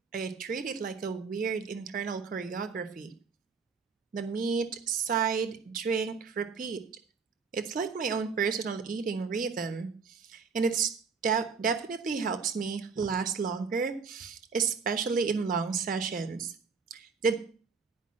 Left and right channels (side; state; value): left; quieter; 5.4 dB